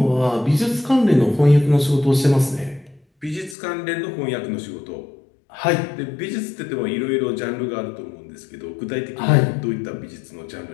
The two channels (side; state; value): right; drops out; at 3.6 s